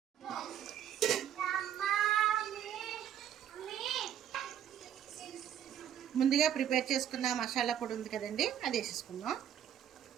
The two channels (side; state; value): left; quieter; 9.9 dB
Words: ముందుగా ప్రిపేర్ చేసుకున్న మసాలా పొడి ఉంది కదండి, అది వేసేసుకుందాం.